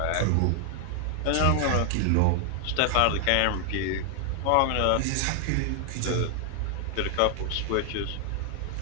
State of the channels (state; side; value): different; both; correlation 0.00